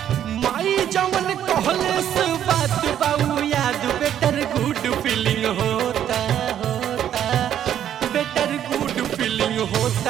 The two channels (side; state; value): left; quieter; 10.3 dB